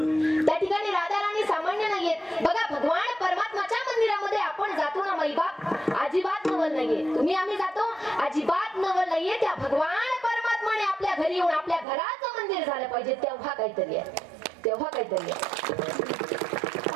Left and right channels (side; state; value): left; drops out; at 11.9 s